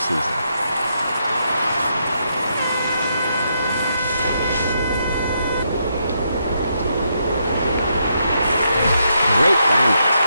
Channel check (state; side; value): inverted; both; correlation -0.79